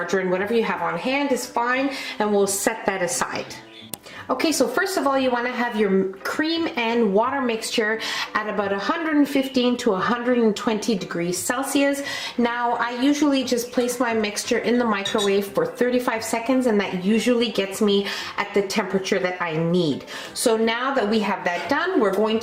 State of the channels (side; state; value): both; identical; correlation 1.00